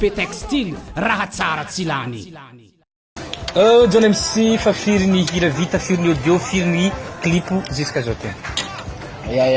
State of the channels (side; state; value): both; identical; correlation 1.00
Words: et Textile raha tsara tsy lany John MC fa firy ny hira vita firy ny audio firy ny clip jusqu'à aujourd'hui